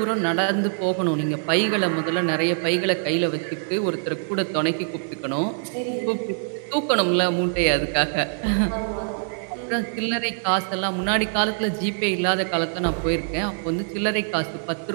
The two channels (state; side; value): silent; left; digital silence